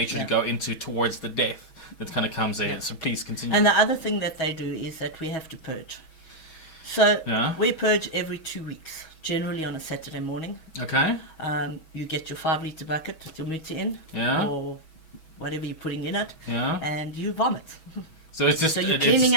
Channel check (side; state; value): right; late; 6.2 ms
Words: Yeah. to go into towards the death that kind of comes in. Yeah. So please continue. And the other thing that they do is that we have to purge. So Yeah. we purge every 2 weeks, generally on a Saturday morning. Okay. You get your 5-litre bucket with your muti in, Yeah. or whatever you're putting in it, Yeah. and you vomit. So it's just So you're it's- cleaning